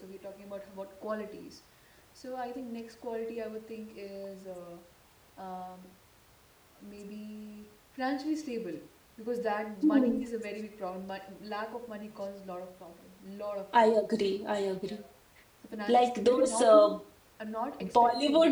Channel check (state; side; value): identical; both; correlation 1.00